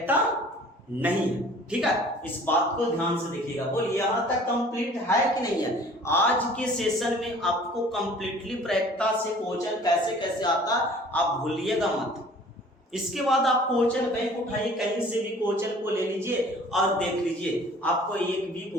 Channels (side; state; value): both; normal; correlation 0.50